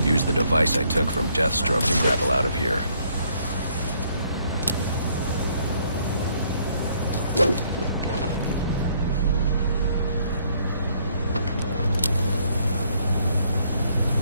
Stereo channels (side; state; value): both; inverted; correlation -0.67